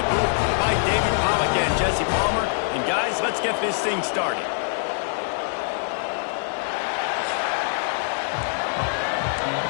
booth by David Pollack and Jesse Palmer. And guys, let's get this thing started.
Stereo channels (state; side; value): silent; right; digital silence